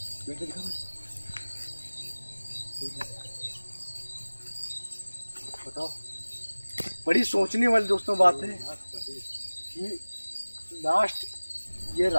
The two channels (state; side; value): inverted; both; correlation -1.00